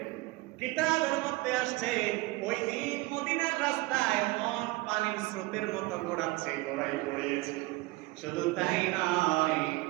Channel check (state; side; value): quieter; left; 21.3 dB